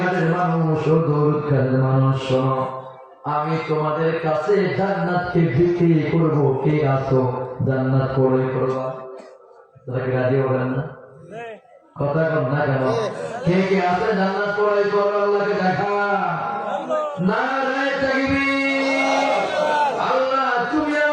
মানুষ, ও দৌলতখানের মানুষ, শোনো, আমি তোমাদের কাছে জান্নাতকে বিক্রি করবো, কে আসো জান্নাত পড়ে করবা? তারা কি রাজি হবেন না? কথা কন না কেন? কে কে আছে জান্নাত পড়ে করবে? আল্লাহকে দেখা। নারায়ে তাকবীর। আল্লাহ, তুমি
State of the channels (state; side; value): identical; both; correlation 1.00